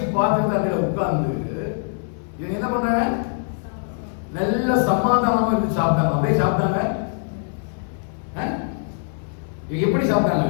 பாத்திரத்துல உட்கார்ந்து இவங்க என்ன பண்றாங்க? நல்ல சமாதானமா இருந்து சாப்பிட்டாங்க. அப்படியே சாப்பிட்டாங்க. எப்படி சாப்பிட்டாங்க?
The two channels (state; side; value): silent; right; digital silence